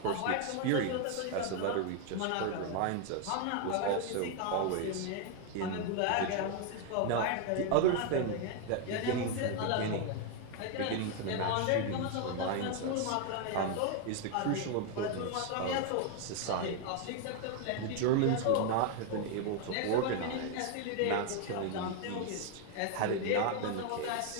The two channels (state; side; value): different; both; correlation 0.01